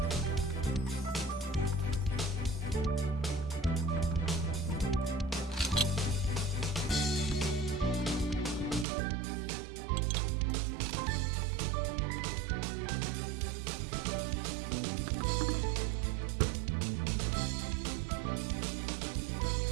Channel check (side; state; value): left; drops out; at 8.8 s